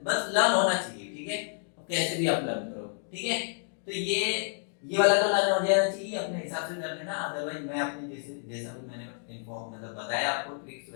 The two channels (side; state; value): right; silent; digital silence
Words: बस लर्न होना चाहिए, ठीक है, कैसे भी आप लर्न करो, ठीक है। तो ये वाला तो लर्न हो जाना चाहिए, अपने हिसाब से कर लेना, अदरवाइज मैं अपने जैसा भी मैंने इन्फॉर्म मतलब बताया आपको ट्रिक्स,